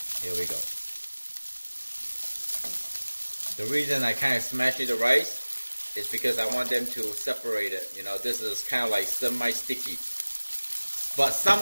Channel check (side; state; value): both; inverted; correlation -1.00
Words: Here we go. The reason I kind of smashed the rice is because I want them to separate it. You know, this is kind of like semi-sticky. But some